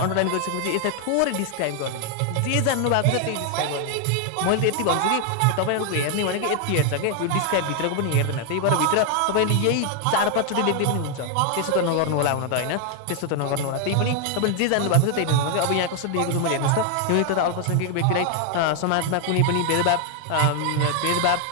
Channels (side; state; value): both; different; correlation 0.00